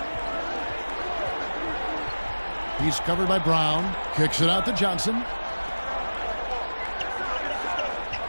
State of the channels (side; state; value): both; inverted; correlation -1.00